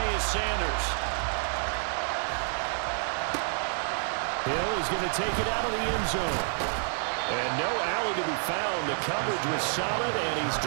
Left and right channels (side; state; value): left; silent; 56 dB below the other